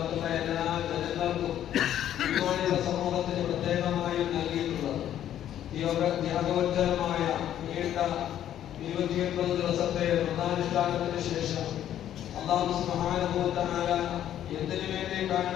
എല്ലാ ജനങ്ങൾക്കും ഇതുപോലെയുള്ള സമൂഹത്തിന് പ്രത്യേകമായും നൽകിയിട്ടുള്ളത് ത്യാഗോജ്ജലമായ നീണ്ട 29 ദിവസത്തെ വ്രതാനുഷ്ഠാനത്തിന് ശേഷം അല്ലാഹു സുബ്ഹാനഹു വ തആല എന്തിനു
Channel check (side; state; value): right; quieter; 11.1 dB